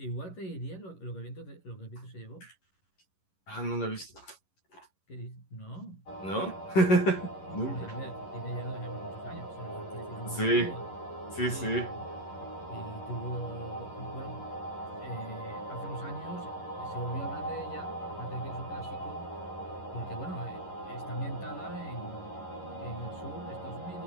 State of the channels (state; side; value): late; right; 11 ms